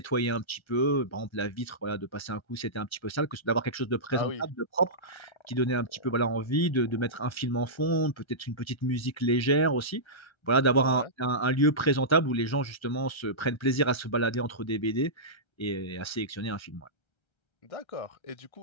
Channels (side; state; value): right; late; 1.3 ms